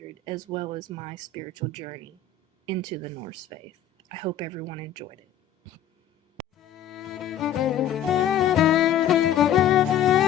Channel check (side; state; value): right; quieter; 8.6 dB